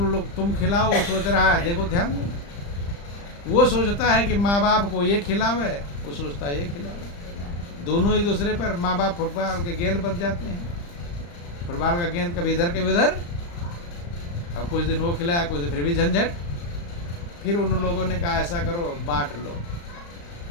तुम खिलाओ, वो सोच रहा है, देखो ध्यान दो, वो सोचता है कि माँ बाप को ये खिलावे, वो सोचता है ये खिलावे। दोनों एक दूसरे पर, माँ बाप फुटबॉल के गेंद बच जाते हैं। फुटबॉल का गेंद कभी इधर कभी उधर। अब कुछ दिन वो खिलाया, कुछ दिन फिर भी झंझट। फिर उन लोगों ने कहा ऐसा करो, बांट लो,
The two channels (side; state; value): right; late; 35 ms